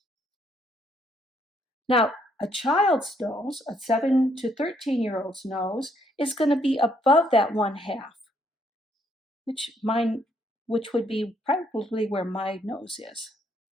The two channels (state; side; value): normal; both; correlation 0.70